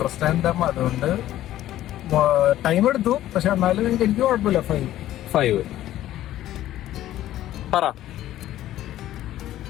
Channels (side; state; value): right; quieter; 13.5 dB